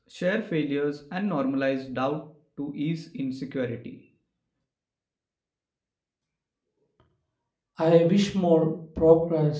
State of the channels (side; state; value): both; identical; correlation 1.00